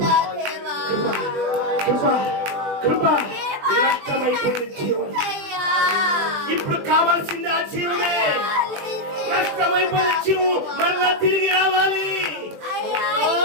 కృప కృప నష్టమైపోయిన జీవం ఇప్పుడు కావాల్సింది ఆ జీవమే. నష్టమైపోయిన జీవం మరలా తిరిగి రావాలి.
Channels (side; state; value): left; late; 20 ms